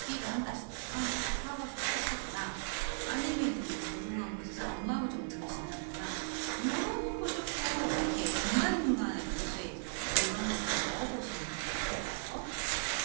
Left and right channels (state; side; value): silent; left; digital silence